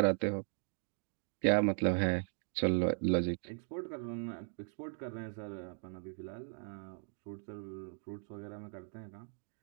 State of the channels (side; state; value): left; silent; 52 dB below the other